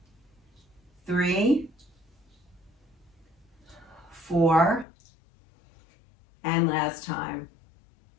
3, 4, and last time.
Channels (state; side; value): drops out; right; at 4.9 s